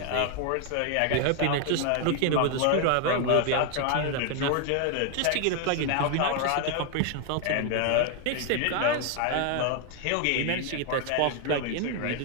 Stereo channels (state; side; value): different; both; correlation 0.00